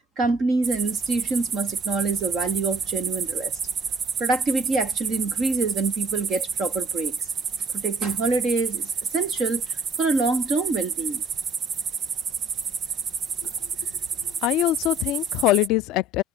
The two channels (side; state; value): both; normal; correlation 0.54